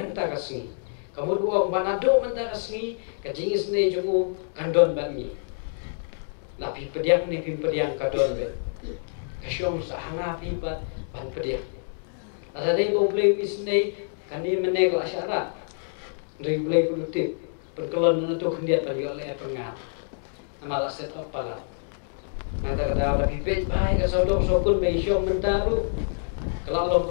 kasih kamu dua banado menta kasih kajingis ne jongu kandon bani lapi pediang ni pediang kadon be kasyong sahanga pipat ban pediang asa dei bo play isne kani meneg la syarat dari play produktif perkelon na to kendiat bagi oleh pengat amala set up pala Nada kada la pipet bai ka sodong sokul mai syong mentaru. Kalau long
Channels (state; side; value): silent; right; digital silence